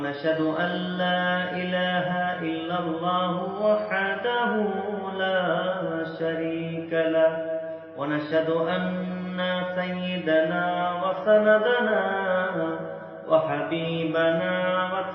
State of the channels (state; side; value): identical; both; correlation 1.00